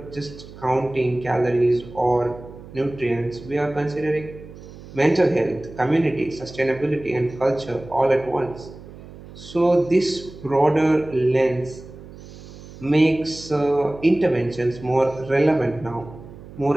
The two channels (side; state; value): right; noise; hum, 17 dB below the sound